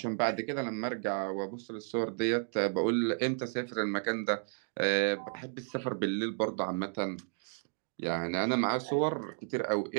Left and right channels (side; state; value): left; silent; digital silence